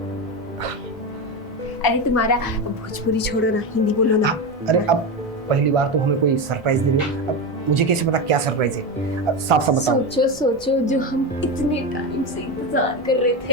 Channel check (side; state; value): both; normal; correlation 0.17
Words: अरे तुम्हारा भोजपुरी छोड़ो ना, हिंदी बोलो ना। अरे अब पहली बार तुम हमें कोई सरप्राइज दे रही हो, अब मुझे कैसे पता क्या सरप्राइज है? अब साफ साफ बताओ। सोचो सोचो, जो हम इतने टाइम से इंतजार कर रहे